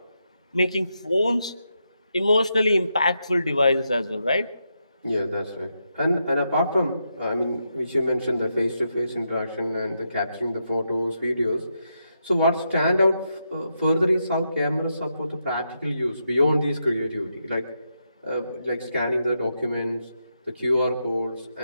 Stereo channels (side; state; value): both; inverted; correlation -0.83